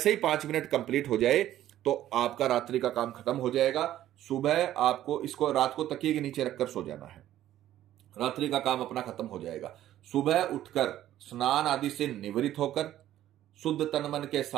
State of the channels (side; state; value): left; quieter; 12.8 dB